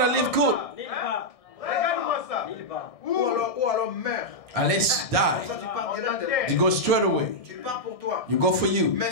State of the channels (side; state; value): right; late; 1.6 ms